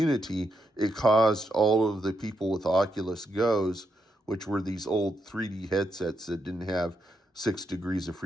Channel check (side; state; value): both; normal; correlation 0.81